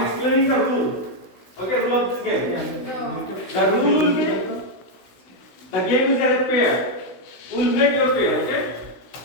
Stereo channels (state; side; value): late; right; 16 ms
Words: explaining the rule. Okay, rule of this game. The rule will be, the game is as a pair. We'll make your pair, okay?